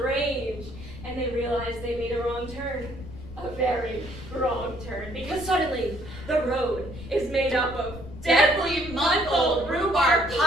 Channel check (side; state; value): left; noise; rumble, 13 dB below the sound